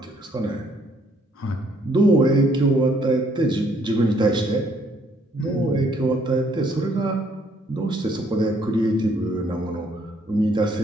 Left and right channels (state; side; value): normal; both; correlation 0.66